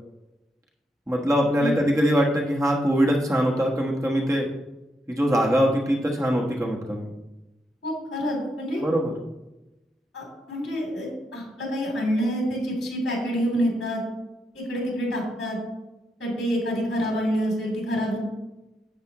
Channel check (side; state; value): both; normal; correlation 0.81